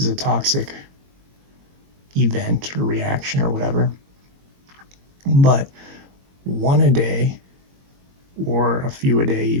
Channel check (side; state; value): left; late; 22 ms